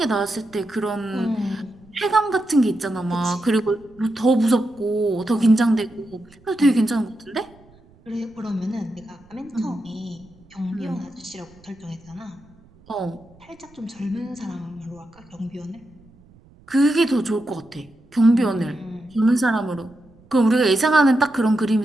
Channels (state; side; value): noise; right; rumble, 27 dB below the sound